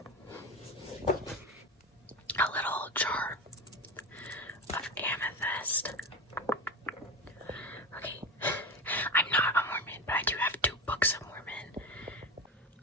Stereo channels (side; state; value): both; normal; correlation 0.23